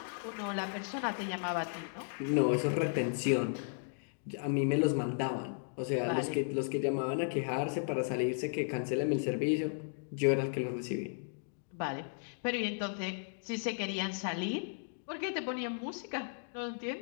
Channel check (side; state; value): right; silent; digital silence